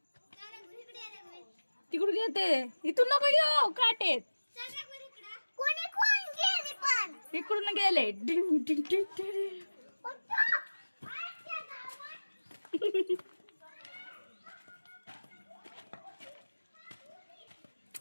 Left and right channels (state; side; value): inverted; both; correlation -1.00